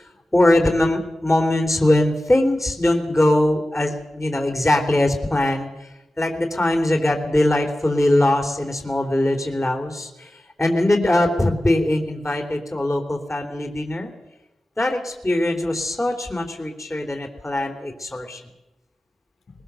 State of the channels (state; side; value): normal; both; correlation 0.94